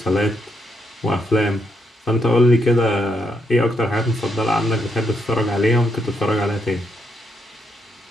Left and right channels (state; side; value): normal; both; correlation 0.78